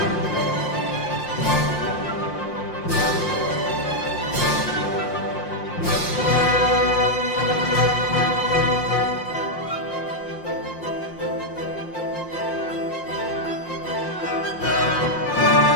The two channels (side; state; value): right; late; 5.7 ms